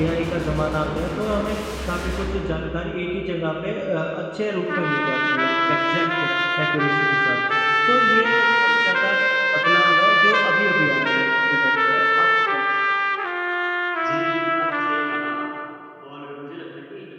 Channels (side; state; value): both; identical; correlation 1.00